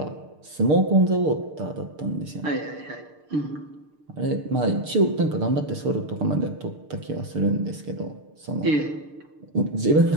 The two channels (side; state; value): left; late; 6.6 ms